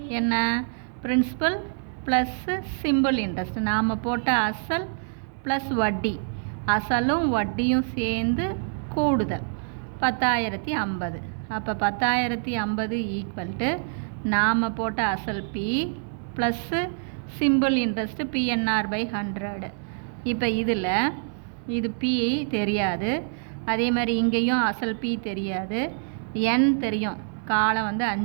என்ன, பிரின்சிபல் ப்ளஸ்ஸு சிம்பிள் இன்ட்ரெஸ்ட். நாம் போட்ட அசல் ப்ளஸ் வட்டி, அசலும் வட்டியும் சேர்ந்து கூடுதல் 10,050. அப்போ 10,050 ஈக்குவல் டு நாம் போட்ட அசல் B plus simple interest PNR/100. இப்போ இதில் இது பி தெரியாது, அதே மாதிரி இங்கேயும் அசல் பி தெரியாது, என் தெரியும், காலம்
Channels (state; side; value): silent; left; 59 dB below the other